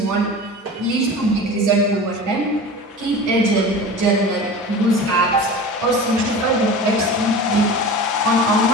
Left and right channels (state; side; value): normal; both; correlation 0.34